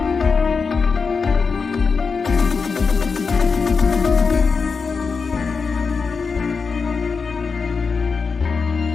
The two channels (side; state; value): right; quieter; 5.1 dB